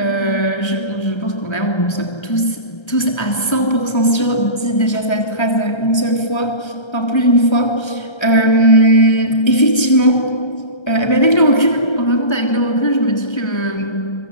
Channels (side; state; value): right; late; 1.3 ms